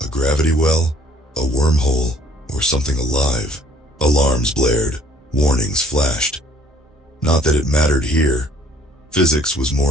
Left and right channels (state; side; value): normal; both; correlation 0.58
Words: A gravity well, a wormhole, or something alive. Alarms blared, warnings flashed. Not that it mattered here. Physics was